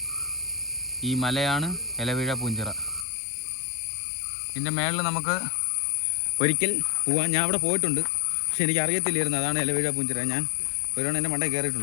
ഈ മലയാണ് ഇലവീഴ പൂഞ്ചിറ. ഇതിൻ്റെ മേളിൽ നമുക്ക് ഒരിക്കൽ പോവാൻ. ഞാൻ അവിടെ പോയിട്ടുണ്ട്, പക്ഷെ എനിക്ക് അറിയത്തില്ലായിരുന്നു അതാണ് ഇലവീഴ പൂഞ്ചിറ. ഞാൻ ഒരുവണ്ണം എൻ്റെ മണ്ടയിൽ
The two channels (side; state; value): right; drops out; at 3.1 s